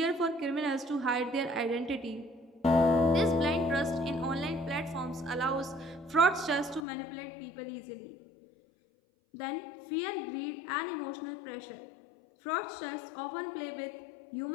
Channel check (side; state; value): right; drops out; at 6.8 s